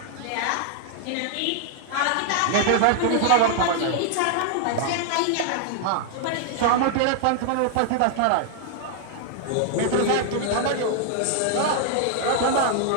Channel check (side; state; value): both; different; correlation 0.00